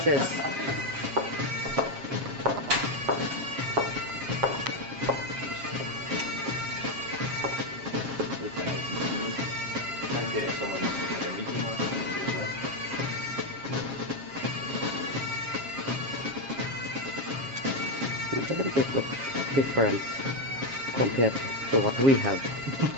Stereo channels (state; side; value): late; left; 7.4 ms